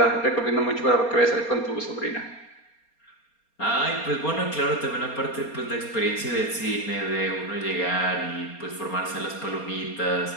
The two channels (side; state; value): right; late; 4.3 ms